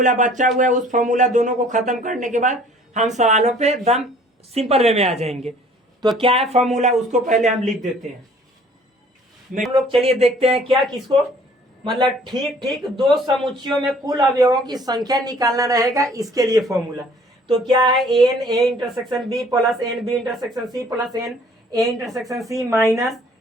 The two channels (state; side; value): normal; both; correlation 0.55